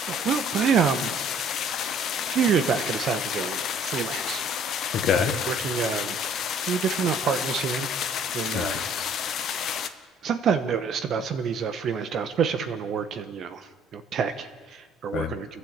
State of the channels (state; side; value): normal; both; correlation 0.57